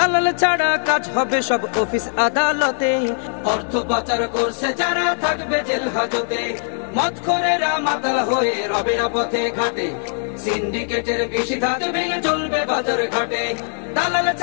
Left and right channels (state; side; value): silent; right; digital silence